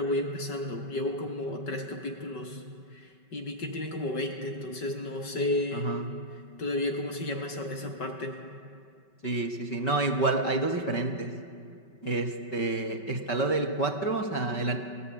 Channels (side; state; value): right; late; 5.2 ms